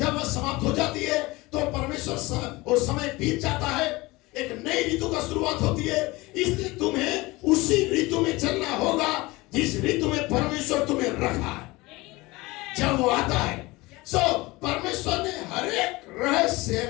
वह समाप्त हो जाती है तो परमेश्वर वो समय बीत जाता है, एक नई ऋतु का शुरुआत होती है। इसलिए तुम्हें उसी ऋतु में चलना होगा जिस ऋतु में परमेश्वर तुम्हें रखा है। जब वो आता है परमेश्वर ने हर एक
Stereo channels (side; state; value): right; quieter; 21.8 dB